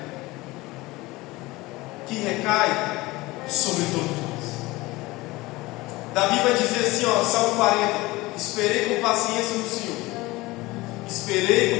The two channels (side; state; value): right; quieter; 20.7 dB